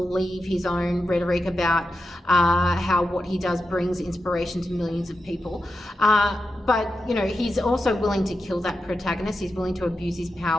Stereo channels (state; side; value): normal; both; correlation 0.89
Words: his own rhetoric about how what he does brings inspiration to millions of people. But, you know, he's also willing to kill that protagonist. He's willing to abuse his